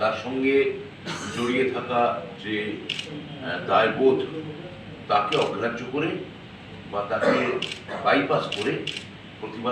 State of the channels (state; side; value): identical; both; correlation 1.00